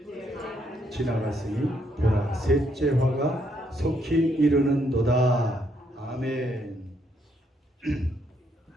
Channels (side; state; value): both; normal; correlation 0.73